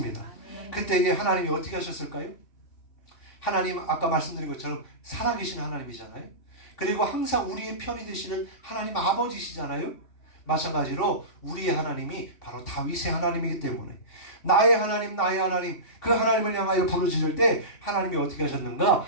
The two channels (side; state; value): right; late; 3.5 ms